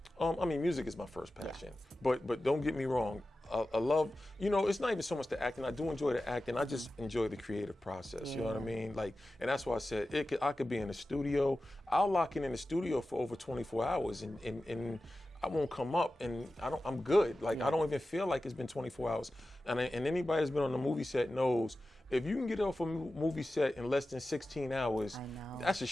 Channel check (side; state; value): both; normal; correlation 0.94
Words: I mean, music is my first passion. But don't get me wrong. I love, you know, it's not even so much the acting. I do enjoy the acting. I just enjoy the creative process. Yeah. You know what I mean? Like, and that's why I said I could be in the studio. I'll lock in the studio for over 24 hours, and I won't come up, and I'm good. Like I don't even feel like it's been 24 hours. And anybody that's been on the movie set knows if you can get off a movie set in less than 16 hours, that's a